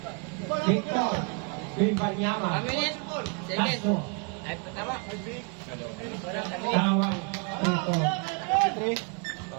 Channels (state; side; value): quieter; left; 35.5 dB